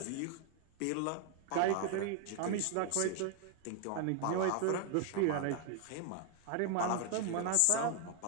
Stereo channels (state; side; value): different; both; correlation 0.00